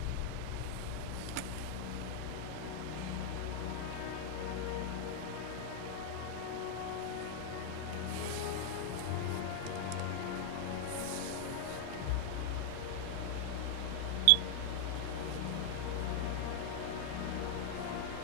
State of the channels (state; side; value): different; both; correlation 0.00